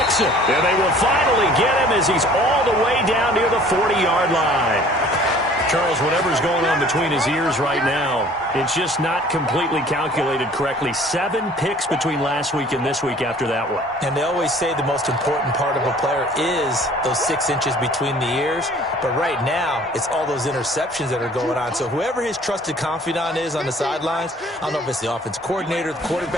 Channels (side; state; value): both; normal; correlation 0.52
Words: it. And they will finally get him as he's all the way down near the 40-yard line. Charles, whatever's going on between his ears right now, it's just not completely calculated correctly. 7 picks between last week and this week after that one. And they always say the most important part of a player is those 6 inches between the ears. But right now, it's all those interceptions that are going on. So whoever his trusted confidant is on the sidelines, I don't know if it's the offense coordinator, the